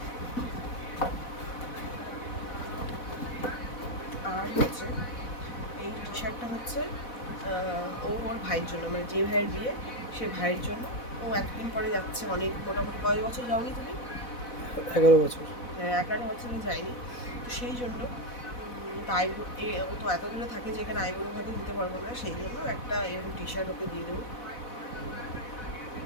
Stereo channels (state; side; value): late; right; 4.1 ms